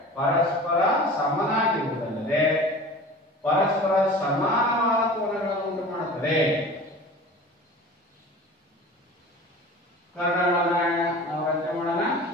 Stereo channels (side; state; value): both; normal; correlation 0.39